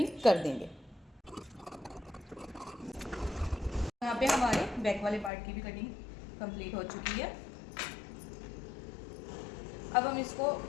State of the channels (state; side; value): drops out; right; at 5.3 s